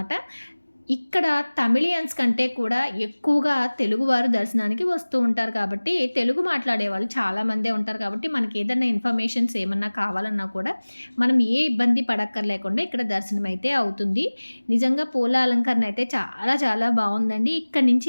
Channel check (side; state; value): both; inverted; correlation -1.00